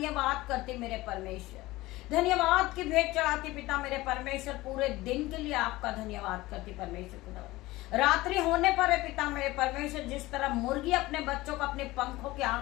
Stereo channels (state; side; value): quieter; right; 19.0 dB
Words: करती मेरे परमेश्वर। धन्यवाद की भेंट चढ़ाती पिता मेरे परमेश्वर। पूरे दिन के लिए आपका धन्यवाद करती परमेश्वर खुदा। रात्रि होने पर है पिता मेरे परमेश्वर, जिस तरह मुर्गी अपने बच्चों को अपने पंखों के